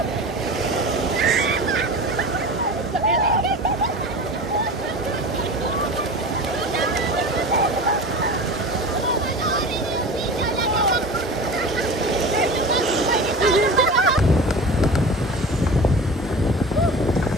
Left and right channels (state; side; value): normal; both; correlation 0.33